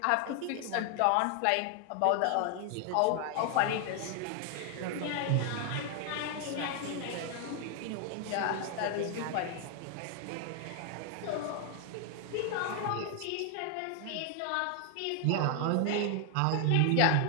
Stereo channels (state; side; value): different; both; correlation 0.00